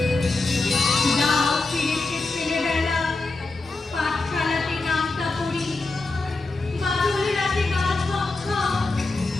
দাও ফিরেছে ছেলেবেলা, পাঠশালাতে নামটা পড়ি, বাদল রাতে গা ছমছম,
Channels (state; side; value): quieter; right; 3.4 dB